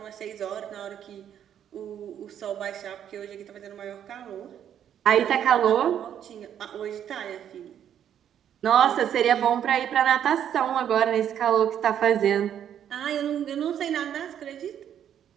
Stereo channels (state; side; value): quieter; left; 9.6 dB